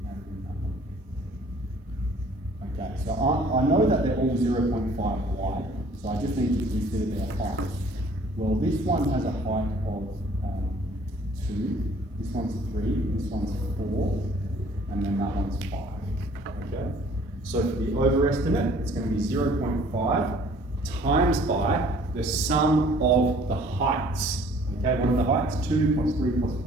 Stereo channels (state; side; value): normal; both; correlation 0.55